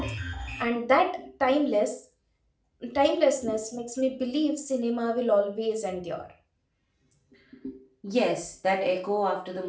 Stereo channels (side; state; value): both; identical; correlation 1.00